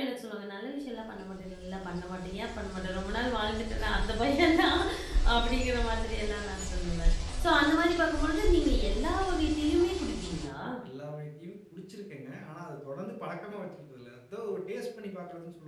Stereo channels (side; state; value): both; identical; correlation 1.00